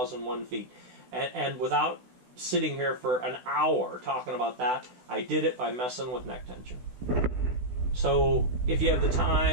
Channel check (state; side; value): late; left; 16 ms